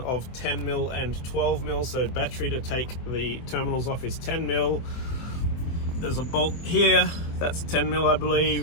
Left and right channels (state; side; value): late; right; 24 ms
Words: of 10 mil and 12 mil. So battery to take the terminals off is 10 mil. There's a bolt here, that's 10 mil I